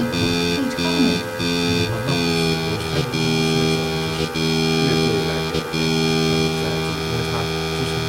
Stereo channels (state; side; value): identical; both; correlation 1.00